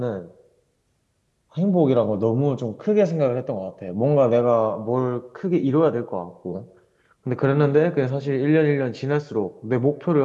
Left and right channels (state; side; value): identical; both; correlation 1.00